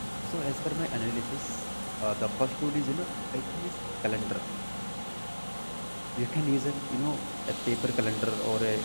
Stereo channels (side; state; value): both; inverted; correlation -1.00